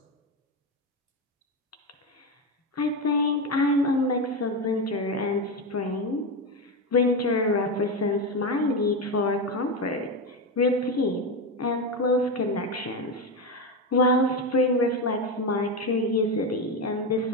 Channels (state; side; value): normal; both; correlation 0.14